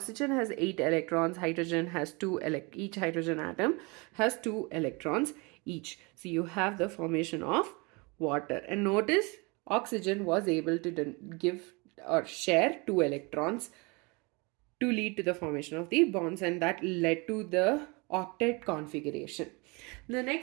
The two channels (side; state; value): left; quieter; 28.1 dB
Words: has 8 electrons, hydrogen has 2, each hydrogen atom has 2 electrons each. So you have the formation of water. And notice oxygen was able to give or share 2 electrons to lead to the formation of the bonds, and that led to the octet configuration. The